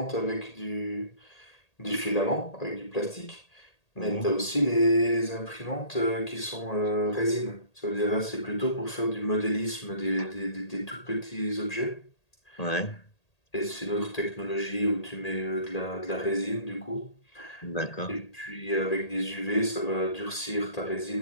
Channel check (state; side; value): late; right; 1.8 ms